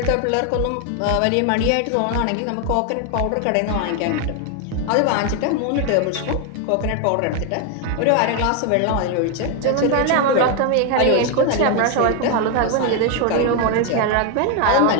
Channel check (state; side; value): different; both; correlation 0.01